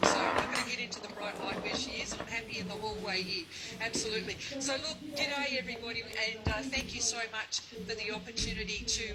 So I'm not going to get into the bright light where she is. I'm happy in the hallway here. Absolutely. So look, g'day everybody, and thank you so much for the opportunity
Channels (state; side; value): identical; both; correlation 1.00